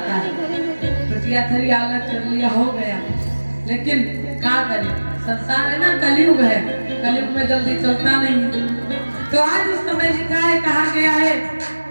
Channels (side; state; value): both; inverted; correlation -1.00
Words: है, टुटिया थरी अलग कर लिया हो गया, लेकिन क्या करें, संसार है ना, कलयुग है, कलयुग में जल्दी चलता नहीं। तो आज उस समय लिखा है, कहा गया है